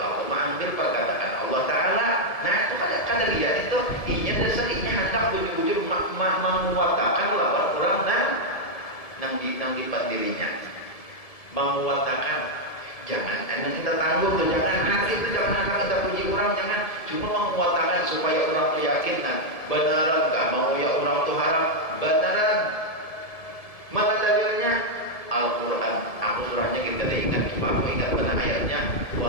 mengambil perkataan Allah Taala. Nah, itu kada lihat itu inya dasar inya hendak bujur-bujur menguatakan lawan orang nang dipat dirinya. Menguatakan. Jangan kita tangguh tuh, jangan hati itu, jangan kita puji orang, jangan cuma menguatakan supaya orang tuh yakin. Nah, beneran gak mau ya orang tuh harap beneran. Mana dalilnya? Al-Quran. Aku surahnya kita ingat, cuma aku ingat benar ayatnya.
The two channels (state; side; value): late; right; 1.7 ms